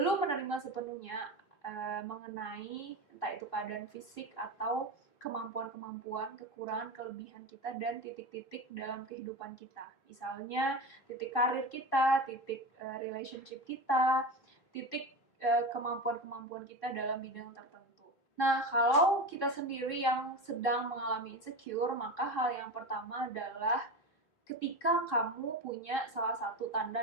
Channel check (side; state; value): right; late; 3.6 ms